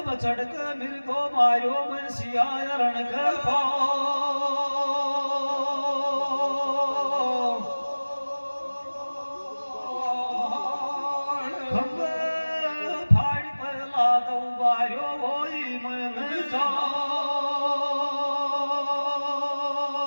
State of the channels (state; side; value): inverted; both; correlation -1.00